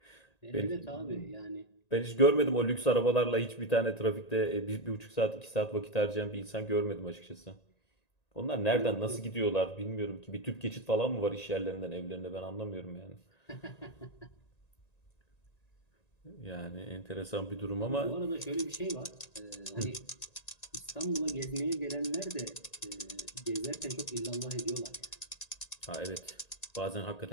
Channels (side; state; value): right; late; 1.9 ms